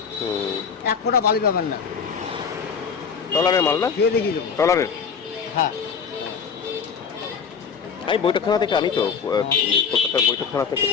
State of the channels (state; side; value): quieter; right; 6.3 dB